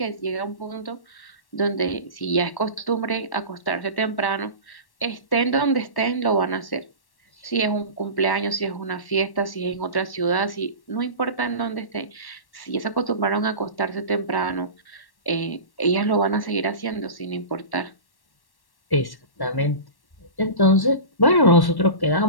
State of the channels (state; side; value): late; right; 1.1 ms